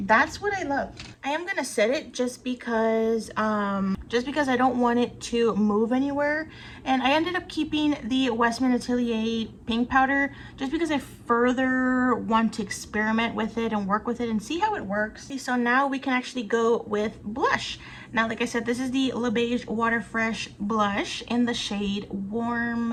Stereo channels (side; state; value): both; identical; correlation 1.00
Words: what I love. I am gonna set it just because I don't want it to move anywhere, and I ended up keeping the Westman Atelier pink powder just because I further want to experiment with it and work with it and see how it works. So now we can actually go with blush. Now, like I said, this is the Le Beige Water Fresh blush in the shade